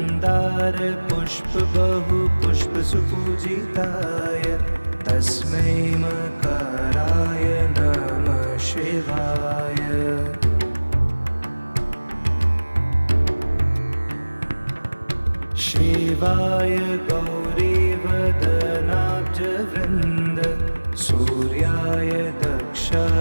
पुष्प बहु पुष्प सुपूजिताय तस्मै मकाराय नमः शिवाय। शिवाय गौरीवदनाब्जवृन्द सूर्याय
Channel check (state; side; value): inverted; both; correlation -1.00